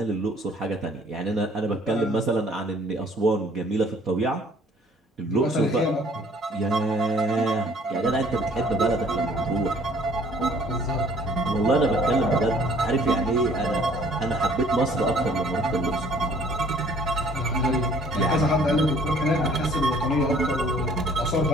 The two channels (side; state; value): both; normal; correlation 0.57